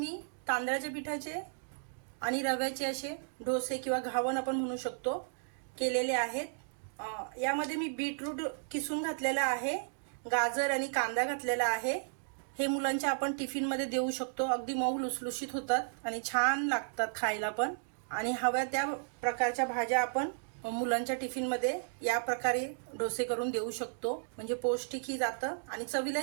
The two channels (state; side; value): silent; left; digital silence